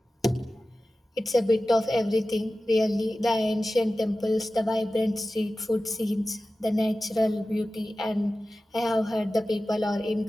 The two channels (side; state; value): both; normal; correlation 0.95